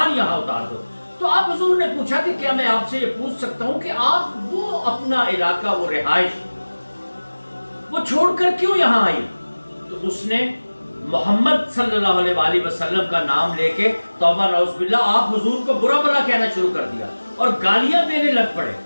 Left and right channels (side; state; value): both; inverted; correlation -1.00